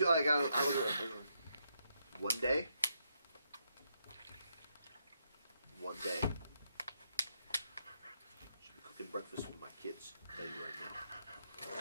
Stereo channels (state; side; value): inverted; both; correlation -0.79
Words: like I look at her, one day, she'll be cooking breakfast with my kids. I'll tell you right now.